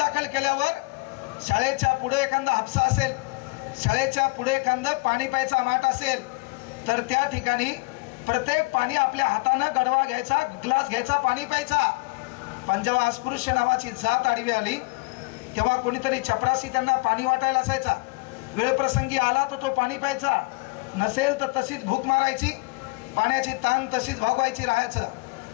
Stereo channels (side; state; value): right; quieter; 27.6 dB